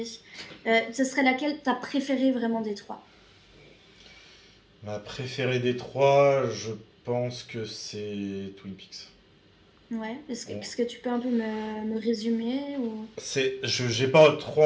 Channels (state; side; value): identical; both; correlation 1.00